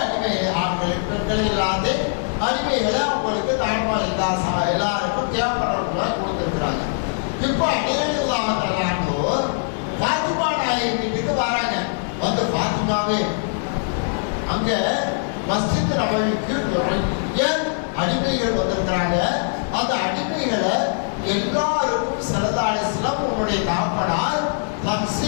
அடிமை ஆண்கள் பெண்கள் இல்லாத அடிமைகளை அவங்களுக்கு தாய்மார் எல்லாருக்கும் தேவைப்படுறவங்க கொடுத்துருக்குறாங்க. இப்போ அடிமைகளாக பாத்திமா நாயகி வீட்டுக்கு வராங்க. வந்து பாத்திமாவே அங்க மஸ்ஜித் நபவிக்கு நிறைய அடிமைகள் வந்திருக்கிறாங்க. அந்த அடிமைகளை எல்லாருக்கும் ஸல்லல்லாஹு அலைஹி வஸல்லம் உன்னுடைய தாப்பனார்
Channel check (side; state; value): right; silent; digital silence